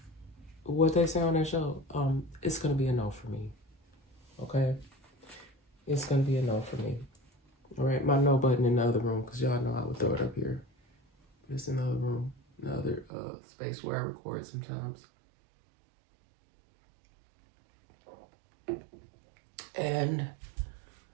what they say on that show, it's gonna be a no for me. Okay? It's gonna be a no for me. All right, my no button in the other room, because y'all know I would throw it up here. It's in the other room, another space where I record sometimes. And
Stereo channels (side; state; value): left; drops out; at 13.1 s